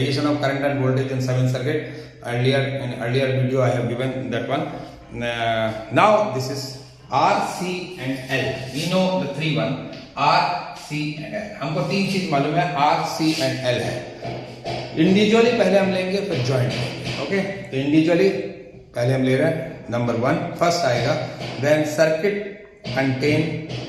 of current and voltage in seventh circuit. Earlier video I have given that one. Now this is R, C and L. We know the three one R, C and L. हमको तीन चीज मालूम है R, C and L है. Individually पहले हम लेंगे फिर जॉइंट लेंगे. ओके, तो इंडिविजुअली पहले हम ले रहे हैं. नंबर वन फर्स्ट आएगा when circuit contain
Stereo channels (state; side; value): identical; both; correlation 1.00